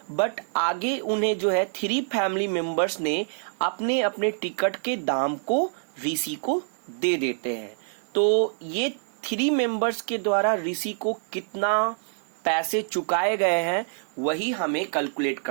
बट आगे उन्हें जो है 3 फैमिली मेंबर्स ने अपने अपने टिकट के दाम को ऋषि को दे देते हैं। तो ये 3 मेंबर्स के द्वारा ऋषि को कितना पैसे चुकाए गए हैं वही हमें कैलकुलेट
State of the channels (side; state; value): left; silent; digital silence